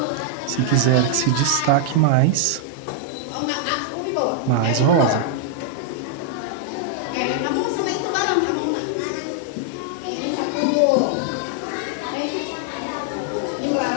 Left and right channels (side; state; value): both; different; correlation -0.01